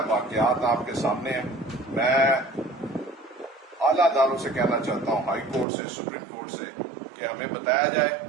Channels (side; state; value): left; drops out; at 5.7 s